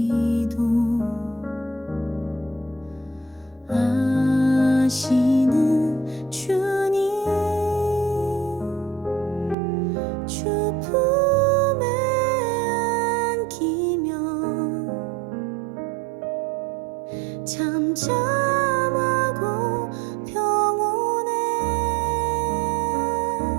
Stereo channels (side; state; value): left; drops out; at 9.6 s